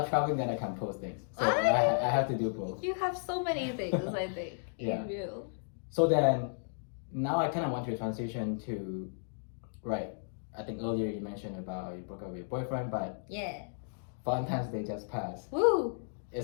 traveling, then I can post things. So I have to do both. You have so many things, I think. Yeah. You do. So then, now I kind of want to transition to, I think earlier you mentioned about you broke up with your boyfriend, but Valentine's Day just passed. Woo!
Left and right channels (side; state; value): right; silent; digital silence